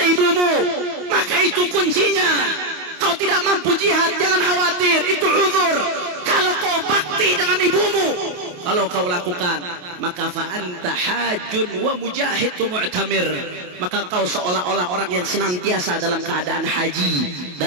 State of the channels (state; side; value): late; left; 28 ms